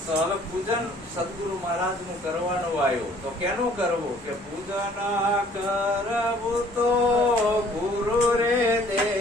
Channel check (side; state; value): both; normal; correlation 0.56